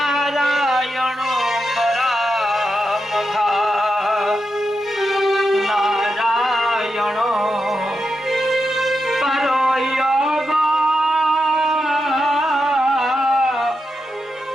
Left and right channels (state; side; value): normal; both; correlation 0.87